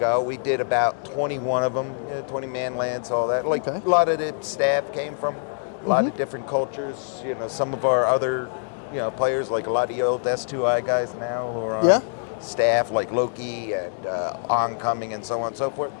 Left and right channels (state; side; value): silent; right; digital silence